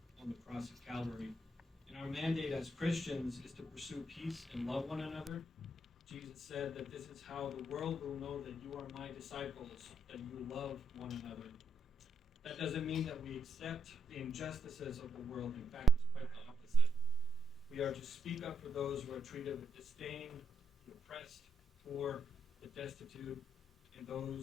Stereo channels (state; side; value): normal; both; correlation 0.78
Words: on the cross of Calvary. And our mandate as Christians is to pursue peace and love one another. Jesus said that this is how the world will know that you are my disciples, that you love one another. That doesn't mean that we accept the injustices of the world. In fact, it's quite the opposite. We are to speak up for those who are treated with disdain, the oppressed, poor, the destitute, and